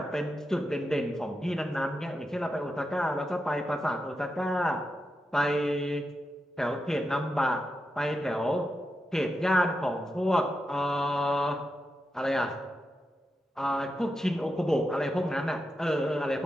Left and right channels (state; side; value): normal; both; correlation 0.88